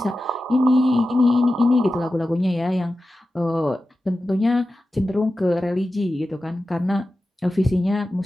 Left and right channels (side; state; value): both; normal; correlation 0.93